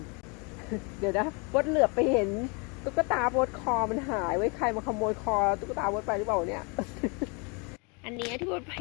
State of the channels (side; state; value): right; quieter; 32.5 dB